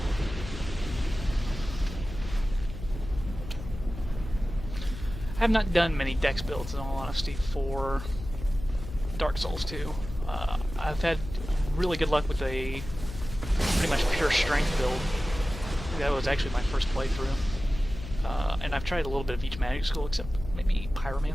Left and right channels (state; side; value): noise; left; hum, 10 dB below the sound